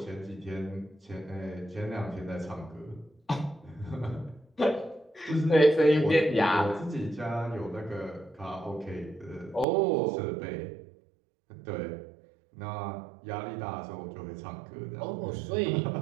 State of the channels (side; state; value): left; drops out; at 9.7 s